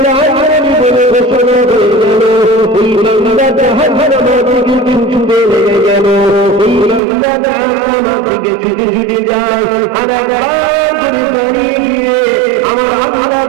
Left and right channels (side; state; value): left; drops out; at 7.0 s